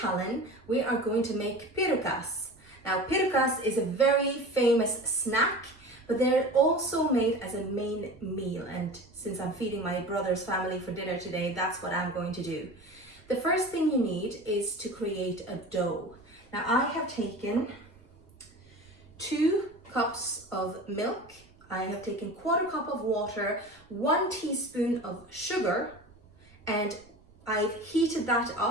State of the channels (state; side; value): noise; right; rumble, 29 dB below the sound